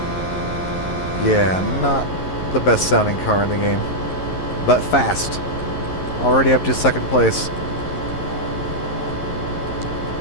Yeah, not the best sounding car in the game, but fast. Already up to second place.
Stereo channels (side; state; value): right; late; 11 ms